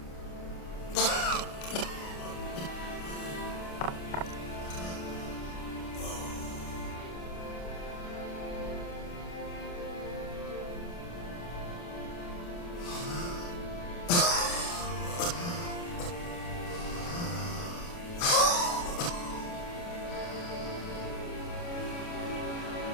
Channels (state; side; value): late; right; 29 ms